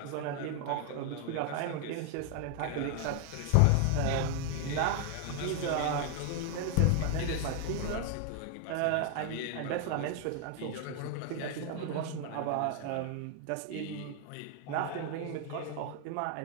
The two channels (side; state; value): both; different; correlation 0.00